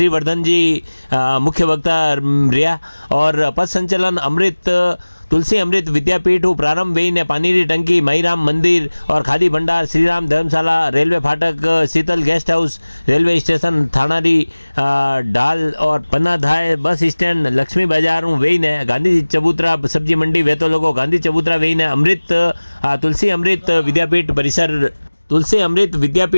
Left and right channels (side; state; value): both; inverted; correlation -1.00